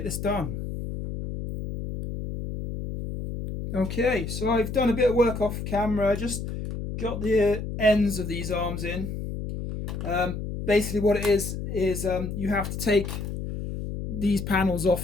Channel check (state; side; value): noise; left; hum, 6 dB below the sound